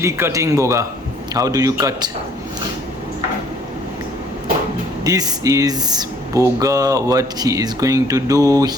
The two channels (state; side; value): normal; both; correlation 0.60